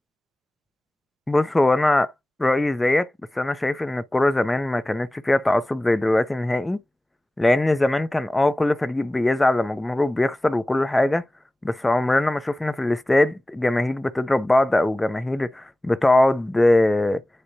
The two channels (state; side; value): normal; both; correlation 0.98